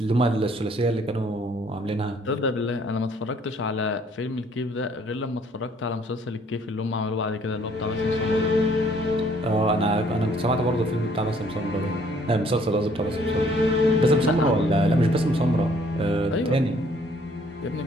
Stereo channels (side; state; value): both; normal; correlation 0.62